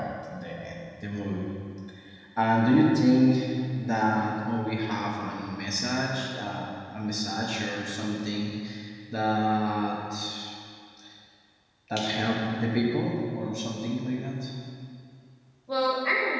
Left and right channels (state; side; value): identical; both; correlation 1.00